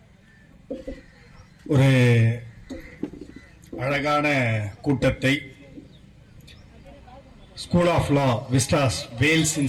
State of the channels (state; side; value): identical; both; correlation 1.00